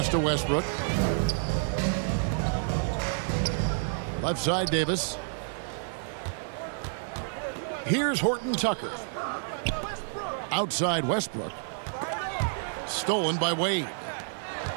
to Westbrook. Left side, Davis. Here's Horton Tucker. Outside Westbrook. Stolen by Wade.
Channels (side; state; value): left; silent; digital silence